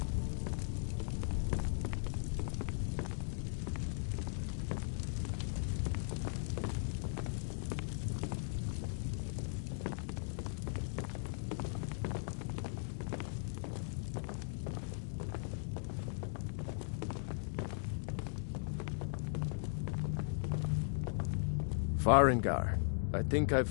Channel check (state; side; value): silent; right; digital silence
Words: Farengar, I think I